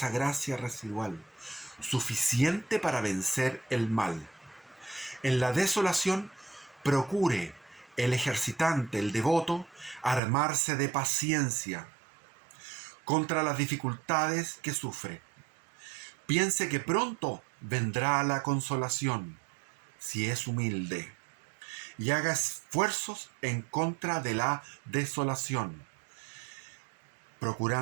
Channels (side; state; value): left; drops out; at 10.2 s